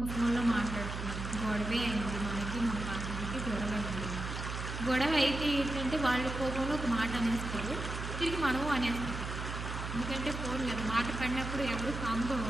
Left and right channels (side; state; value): right; noise; hum, 5 dB below the sound